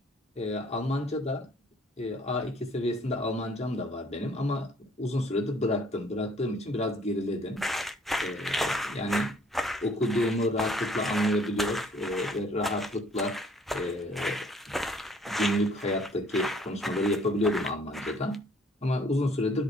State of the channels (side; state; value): both; normal; correlation 0.58